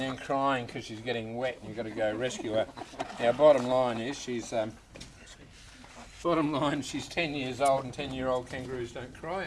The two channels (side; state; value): both; identical; correlation 1.00